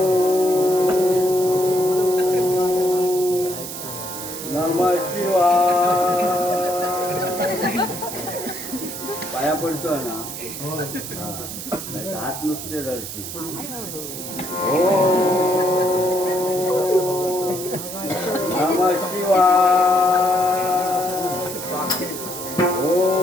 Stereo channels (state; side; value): noise; right; hiss, 8 dB below the sound